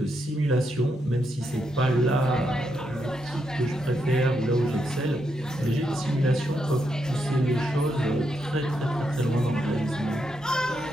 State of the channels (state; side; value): normal; both; correlation 0.81